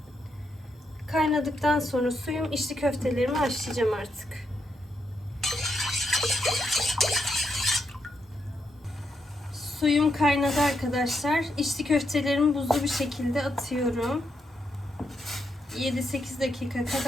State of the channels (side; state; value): both; normal; correlation 0.81